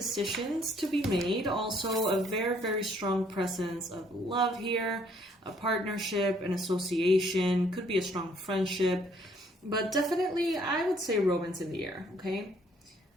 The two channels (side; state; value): both; normal; correlation 0.64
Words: to be made. Also a very, very strong presence of love here, a partnership, an association, could be a strong friendship, but definitely I would say romance in the air, okay?